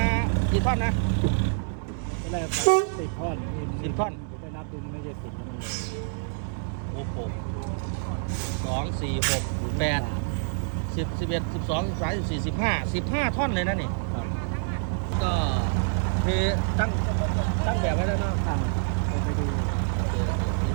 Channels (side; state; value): left; silent; digital silence